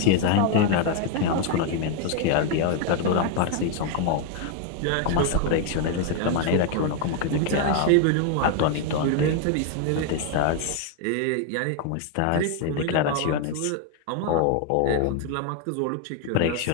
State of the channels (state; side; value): different; both; correlation 0.01